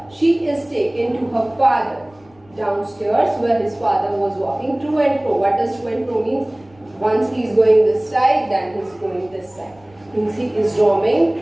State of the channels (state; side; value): noise; left; rumble, 29 dB below the sound